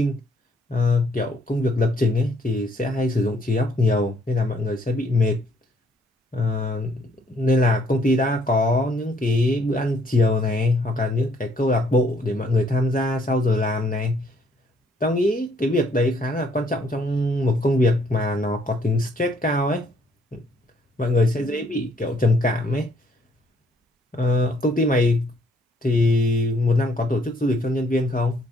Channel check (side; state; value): both; normal; correlation 0.65